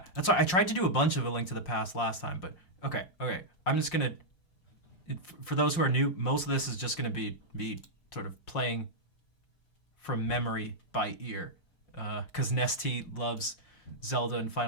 That's why I tried to do a bunch of A Link to the Past last time, but okay. I'm just gonna, for those who are new, most of this is just gonna be me sort of playing from memory by ear, because Nesty loves Zelda and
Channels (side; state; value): right; late; 5.6 ms